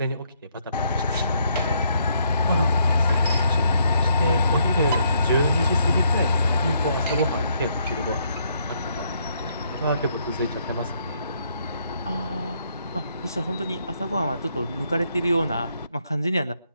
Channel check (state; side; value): inverted; both; correlation -0.71